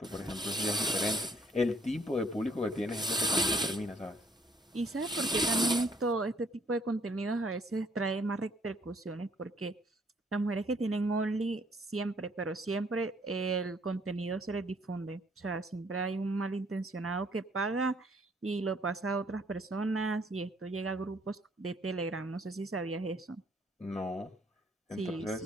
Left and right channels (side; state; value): both; normal; correlation 0.65